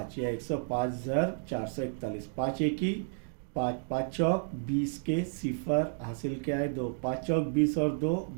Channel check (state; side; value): silent; left; digital silence